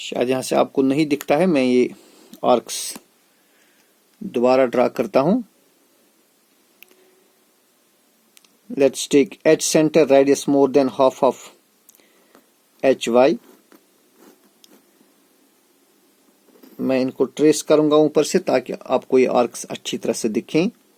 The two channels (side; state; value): both; identical; correlation 1.00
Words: यहां से आपको नहीं दिखता है, मैं ये आर्क्स दोबारा ड्रा करता हूं। Let's take H centre, radius more than half of HY। मैं इनको ट्रेस करूंगा ऊपर से ताकि आपको ये आर्क्स अच्छी तरह से दिखें।